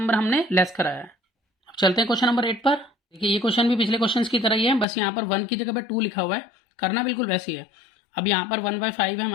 हमने लेस कराया। अब चलते हैं क्वेश्चन नंबर 8 पर। देखिए ये क्वेश्चन भी पिछले क्वेश्चन की तरह ही है, बस यहाँ पर 1 की जगह पर 2 लिखा हुआ है, करना बिल्कुल वैसे ही है। अब यहाँ पर 1/5 है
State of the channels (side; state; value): right; drops out; at 4.9 s